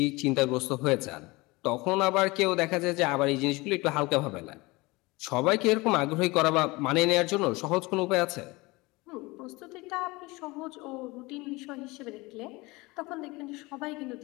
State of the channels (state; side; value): quieter; right; 23.1 dB